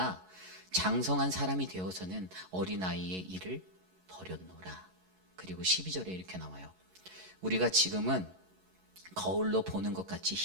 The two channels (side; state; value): left; late; 11 ms